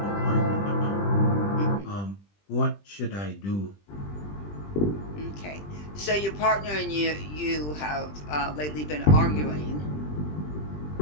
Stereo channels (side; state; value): right; late; 20 ms